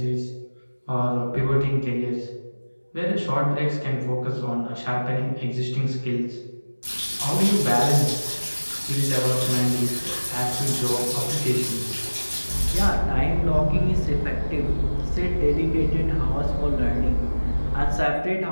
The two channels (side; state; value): both; inverted; correlation -1.00